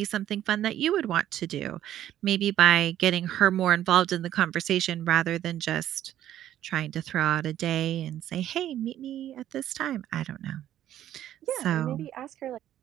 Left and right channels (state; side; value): quieter; left; 11.9 dB